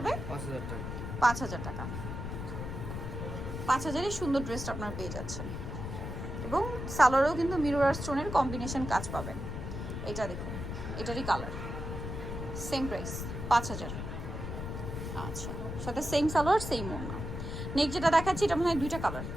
5000 টাকা। 5000 টাকা। 5000 সুন্দর ড্রেসটা আপনারা পেয়ে যাচ্ছেন, এবং সালোয়ারেও কিন্তু মিরর আর স্টোনের কম্বিনেশন কাজ পাবেন। এটা দেখুন, এটারই কালার, সেম প্রাইস 5000। আচ্ছা, সাথে সেম সালোয়ার সেম ওড়না। নেক্সট যেটা দেখাচ্ছি এটা মনে হয় দুইটা কালার।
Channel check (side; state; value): left; noise; rumble, 6 dB below the sound